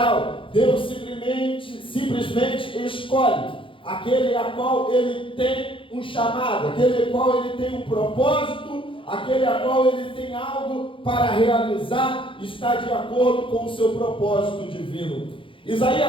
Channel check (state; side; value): late; right; 0.25 ms